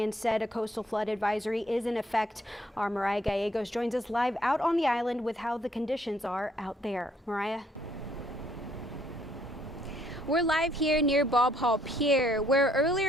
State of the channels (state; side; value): normal; both; correlation 0.67